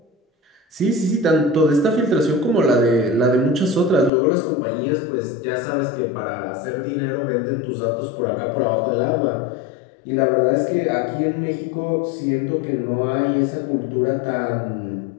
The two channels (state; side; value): drops out; right; at 4.1 s